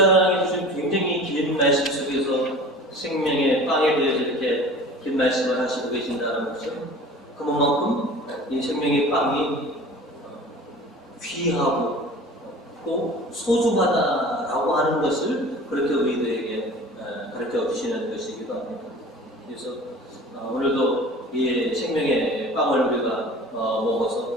주신 굉장히 긴 말씀 속에서 생명의 빵에 대해서 이렇게 긴 말씀을 하시고 계신다는 것은 그만큼 이 생명의 빵이 귀하고 또 소중하다라고 하는 것을 그렇게 우리들에게 가르쳐 주시는 것이기도 합니다. 그래서 오늘도 이 생명의 빵을 우리가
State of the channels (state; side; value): normal; both; correlation 0.41